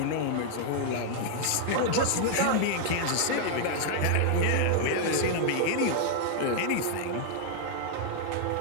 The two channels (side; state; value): both; different; correlation -0.01